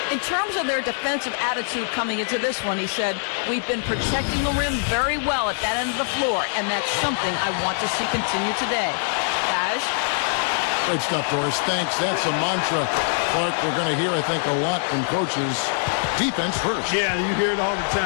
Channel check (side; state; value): right; silent; digital silence